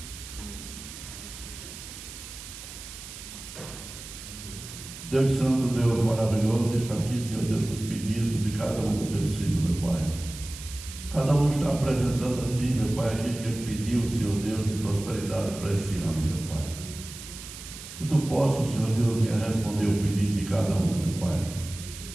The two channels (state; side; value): noise; right; hiss, 13 dB below the sound